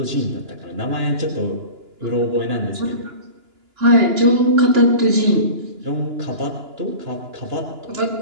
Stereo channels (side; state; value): left; late; 2.9 ms